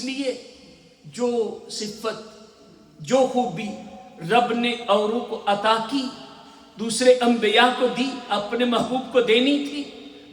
لیے جو صفت، جو خوبی رب نے اوروں کو عطا کی دوسرے انبیاء کو دی، اپنے محبوب کو دینی تھی،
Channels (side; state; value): both; identical; correlation 1.00